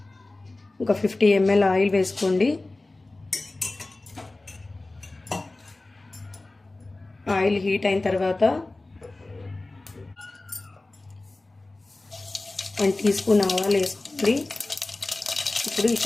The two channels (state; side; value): quieter; right; 3.0 dB